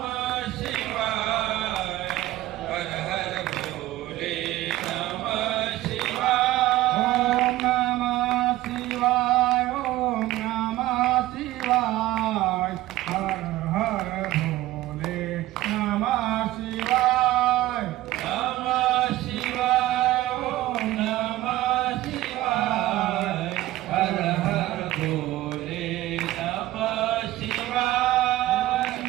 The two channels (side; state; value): left; quieter; 15.9 dB